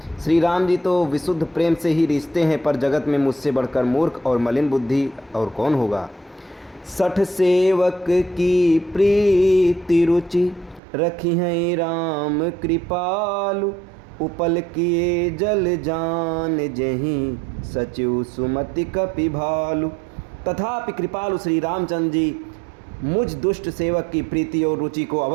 श्री राम जी तो विशुद्ध प्रेम से ही रिश्ते हैं, पर जगत में मुझसे बढ़कर मूर्ख और मलिन बुद्धि और कौन होगा। सठ सेवक की प्रीति रुचि रखी है राम कृपालु। उपल किए जल जान जहीं सचिव सुमति कपि भालु। तथापि कृपालु श्री रामचंद्र जी मुझ दुष्ट सेवक की प्रीति और रुचि को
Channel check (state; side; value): drops out; left; at 10.8 s